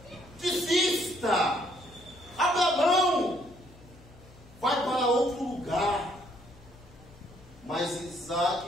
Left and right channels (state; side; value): noise; left; hum, 23 dB below the sound